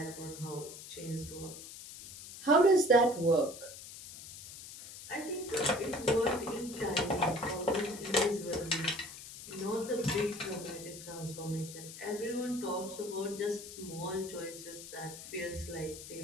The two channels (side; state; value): left; noise; hiss, 13 dB below the sound